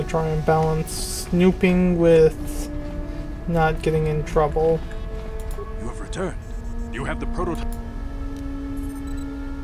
try and balance snooping with not getting in trouble. You have returned. You have the prototype.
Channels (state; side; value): identical; both; correlation 1.00